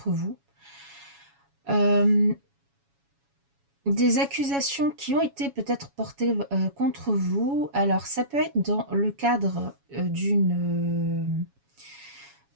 vous. Des accusations qui ont été peut-être portées contre vous. Alors, ça peut être dans le cadre d'une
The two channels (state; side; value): late; left; 7.2 ms